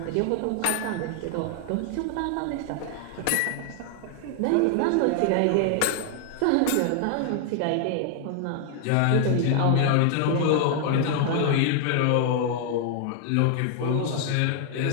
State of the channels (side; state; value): both; different; correlation 0.00